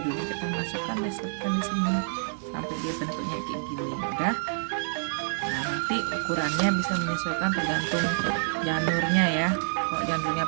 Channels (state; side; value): silent; left; digital silence